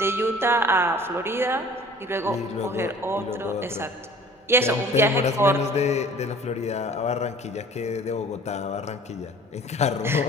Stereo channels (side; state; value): both; normal; correlation 0.48